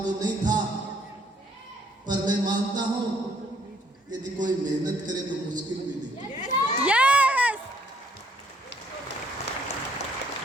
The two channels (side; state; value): both; normal; correlation 0.66